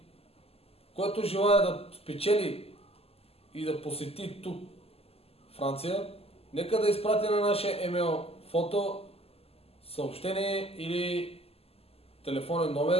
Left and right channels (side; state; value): right; late; 0.29 ms